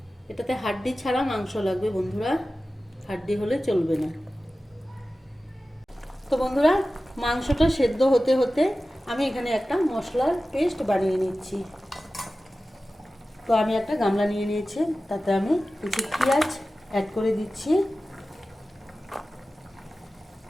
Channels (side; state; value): both; normal; correlation 0.95